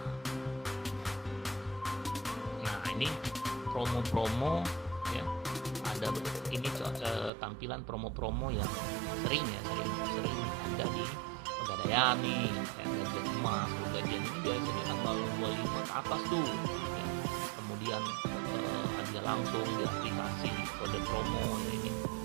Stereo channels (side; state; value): left; drops out; at 7.3 s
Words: Nah, ini promo-promo ya, ada ini tampilan promo-promo yang sering ada di Pegadaian nih, gajian emas. Gajian ini biasanya tanggal 25 ke atas tuh ya. Kemudian hadiah langsung di aplikasi, kode promo ya ini,